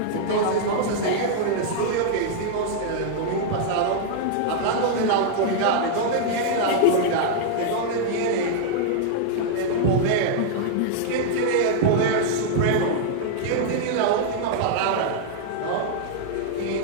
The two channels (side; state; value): both; different; correlation -0.01